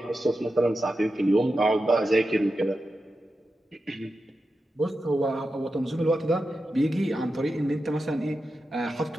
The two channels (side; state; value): both; normal; correlation 0.90